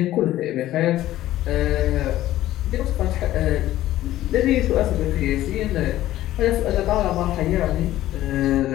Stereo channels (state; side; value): quieter; right; 14.4 dB